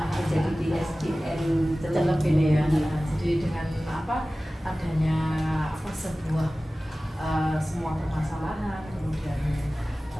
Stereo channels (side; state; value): both; normal; correlation 0.97